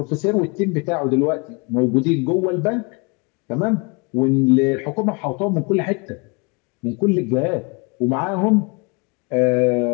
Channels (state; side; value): quieter; right; 30.7 dB